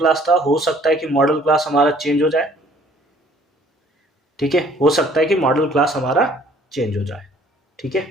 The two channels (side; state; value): both; normal; correlation 0.57